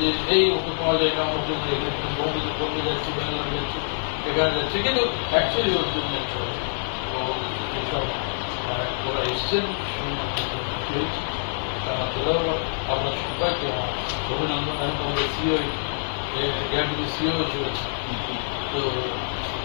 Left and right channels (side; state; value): right; silent; digital silence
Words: এই ওকে পাওয়া যায় না, ওকে বম্বে যাচ্ছি, ব্যাঙ্গালোর যাচ্ছি, এখানে যাচ্ছে, কিন্তু অ্যাকচুয়ালি ওর জন্য চলে। তো এইসব ওরা এসছেন খুশি হয়েছি। আপনার সবাইকে আমার অভিনন্দন। আমি তোমাদের সিও এআরডিবি সিও চলেছে। তো